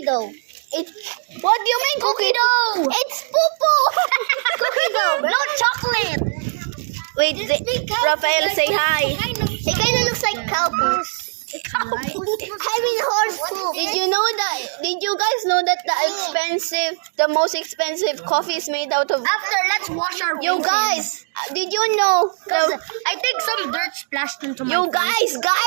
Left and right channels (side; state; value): left; silent; digital silence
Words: dough. it. What do you mean cookie dough? It's poo-poo. Cookie dough, no chocolate. Wait, Rafael, say hi. It kind of looks like cow poo. I mean horse poo. Did you know that? Did did you guys know that the most expensive coffee is made out of? After, let's wash our You faces. guys, did you know? I think some dirt splashed into my You face.